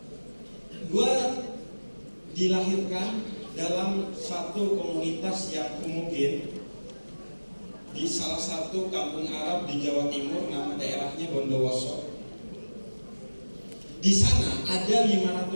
satu komunitas yang homogen di salah satu kampung Arab di Jawa Timur, nama daerahnya Bondowoso. Di sana ada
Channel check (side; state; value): both; inverted; correlation -1.00